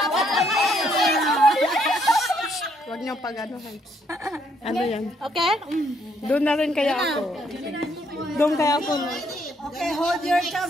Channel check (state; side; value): normal; both; correlation 0.71